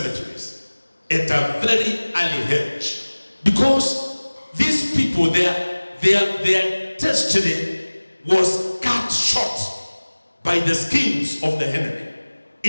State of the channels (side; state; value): both; inverted; correlation -1.00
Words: at a very early age. Because these people, their destiny was cut short by the schemes of the enemy.